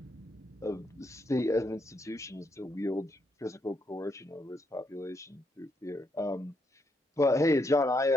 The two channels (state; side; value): normal; both; correlation 0.77